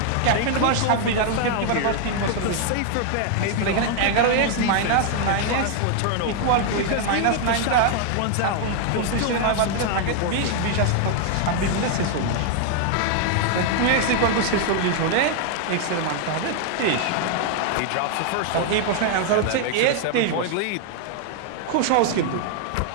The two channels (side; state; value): both; different; correlation 0.00